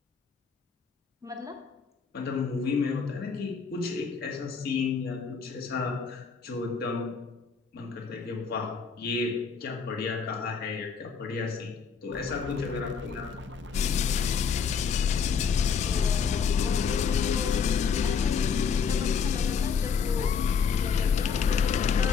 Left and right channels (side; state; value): right; quieter; 6.1 dB